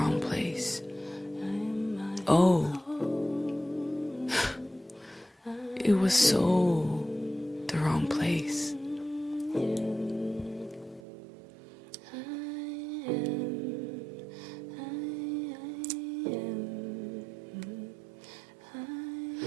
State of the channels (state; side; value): drops out; left; at 11.0 s